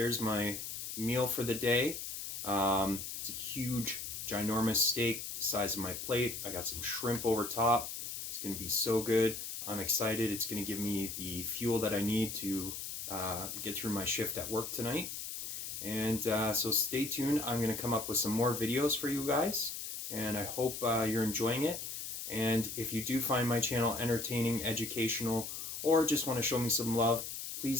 my meal for the day. It's a huge, ginormous steak the size of my plate. I got some shrimp over top. It's going to be so good. I'm excited. It's going to give me the fuel that I need to get through my shift at work tonight. And so stay tuned. I'm going to come up with some more videos for you guys. And I hope you're enjoying it. And if you do find my channel entertaining, educational, or just want to show me some love,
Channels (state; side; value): noise; left; hiss, 6 dB below the sound